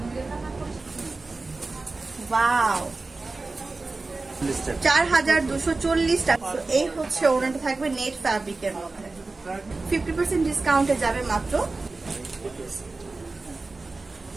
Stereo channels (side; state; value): left; quieter; 3.6 dB